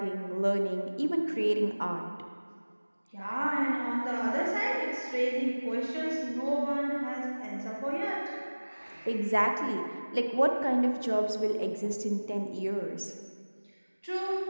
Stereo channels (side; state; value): both; inverted; correlation -1.00